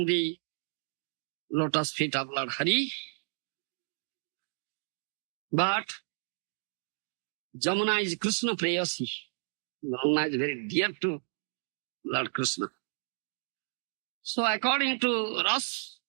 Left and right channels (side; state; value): left; silent; digital silence